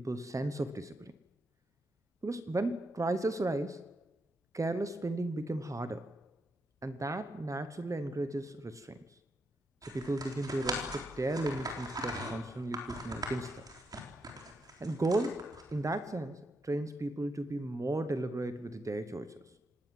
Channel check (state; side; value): normal; both; correlation 0.81